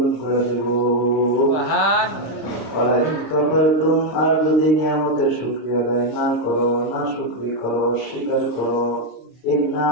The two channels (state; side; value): late; right; 26 ms